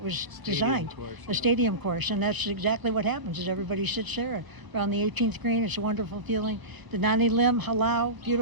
designed. Course, A stadium course. And that's exactly what happens is everybody sits there around the 18th green. It's a wonderful feeling. The Nani Lim, Halau,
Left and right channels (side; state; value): left; late; 1.1 ms